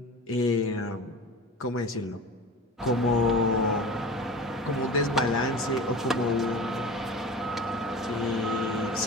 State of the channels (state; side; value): normal; both; correlation 0.35